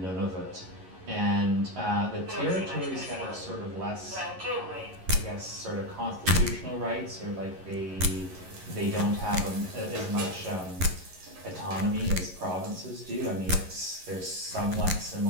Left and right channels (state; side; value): late; left; 11 ms